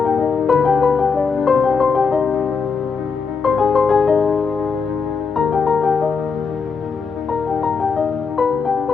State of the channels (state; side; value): quieter; right; 5.2 dB